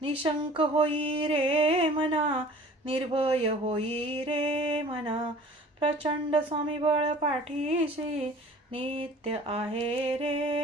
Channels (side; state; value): both; normal; correlation 0.47